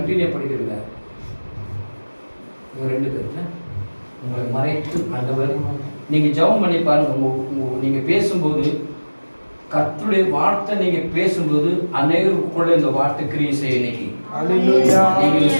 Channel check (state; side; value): inverted; both; correlation -1.00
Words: படிக்கிறீங்க. இவங்க 2 பேர் உங்களை மறைத்து ஆண்டவர் நீங்க ஜெபம் பண்ணி பாருங்க. நீங்க பேசும்போது கர்த்தருடைய வார்த்தை நீங்க பேசும்போது அநேகருக்குள்ள இந்த வார்த்தை கிரியை செய்ய இன்னைக்கு. ஹalleluya. நீங்க